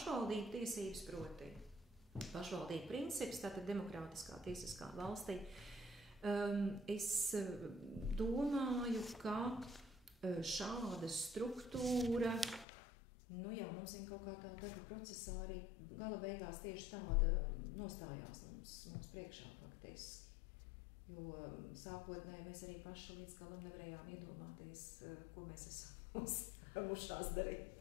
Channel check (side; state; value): right; drops out; at 12.7 s